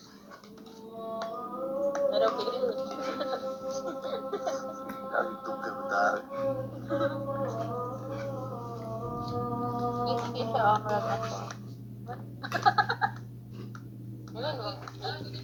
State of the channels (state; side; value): identical; both; correlation 1.00